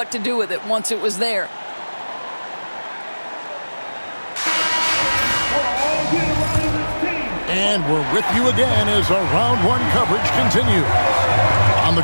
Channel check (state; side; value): inverted; both; correlation -1.00